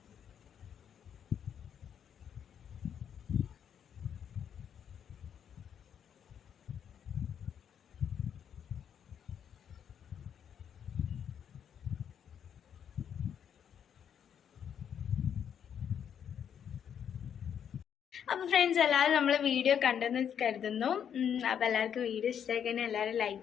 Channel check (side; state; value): right; quieter; 8.5 dB